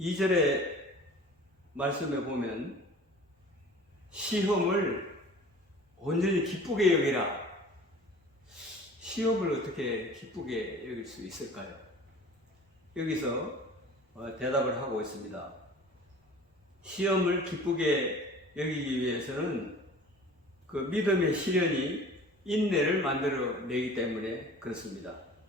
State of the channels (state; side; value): normal; both; correlation 0.44